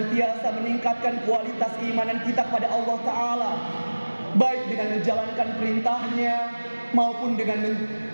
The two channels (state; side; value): inverted; both; correlation -1.00